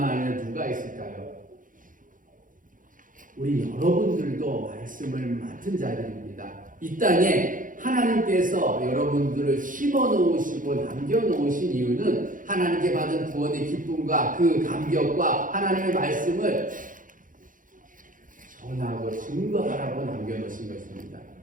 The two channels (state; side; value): late; left; 0.39 ms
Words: 아니라 누가 있을까요? 우리 여러분들도 말씀을 맡은 자들입니다. 이 땅에 하나님께서 여러분들을 심어놓으시고 남겨놓으신 이유는 하나님께 받은 구원의 기쁨과 그 감격과 하나님의 말씀을 전하고 증거하라고 남겨놓으신 것입니다.